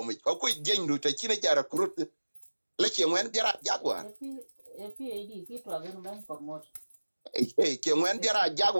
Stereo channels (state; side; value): inverted; both; correlation -1.00